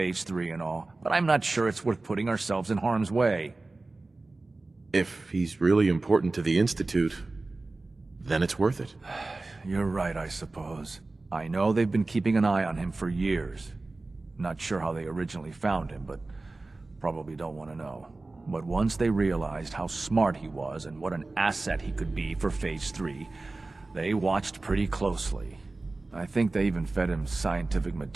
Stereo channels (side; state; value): left; quieter; 3.3 dB